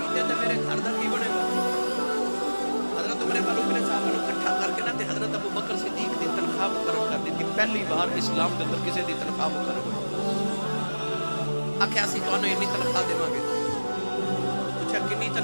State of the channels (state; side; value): inverted; both; correlation -1.00